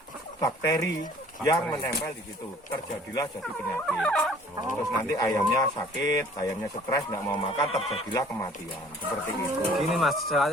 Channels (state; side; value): normal; both; correlation 0.53